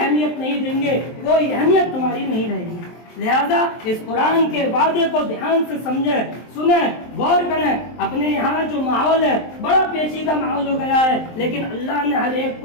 نہیں دیں گے، کوئی اہمیت تمہاری نہیں رہے گی۔ لہذا اس قرآن کے وعدے کو دھیان سے سمجھیں، سنیں، غور کریں۔ اپنے یہاں جو ماحول ہے بڑا پیچیدہ ماحول ہو گیا ہے، لیکن اللہ نے ہر ایک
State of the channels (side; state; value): right; late; 23 ms